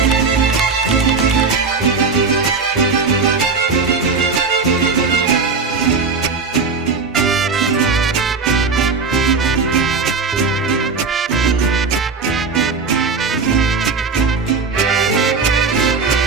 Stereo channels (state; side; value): quieter; left; 4.6 dB